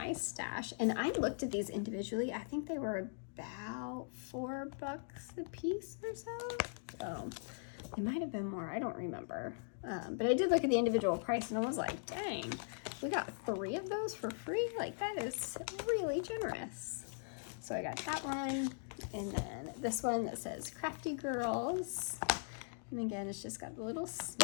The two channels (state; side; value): silent; right; digital silence